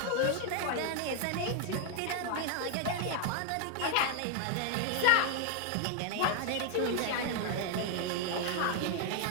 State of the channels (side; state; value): both; different; correlation 0.00